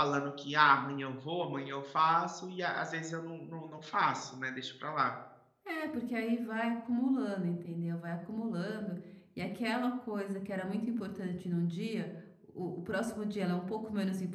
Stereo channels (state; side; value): identical; both; correlation 1.00